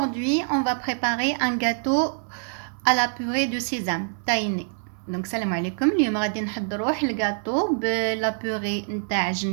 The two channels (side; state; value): left; silent; 62 dB below the other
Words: on va préparer un gâteau à la purée de sésame tahini. Donc salam alaikum, اليوم غادي نحضروا الgâteau بلا purée نتاع